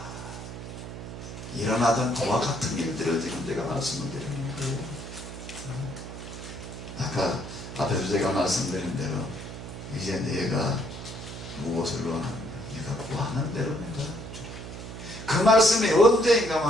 일어나던 그와 같은 일들을 지금 제가 말씀을 드리는 거예요. 아까 앞에서 제가 말씀드린 대로 이제 내가 무엇을 원하는가? 내가 구하는 대로 내가 그 말씀이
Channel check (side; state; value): right; noise; hum, 10 dB below the sound